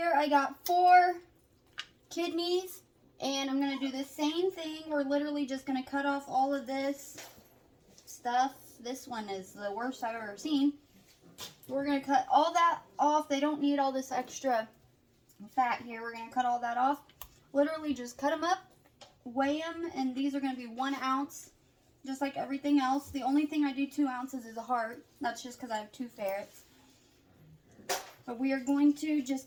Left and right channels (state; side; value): identical; both; correlation 1.00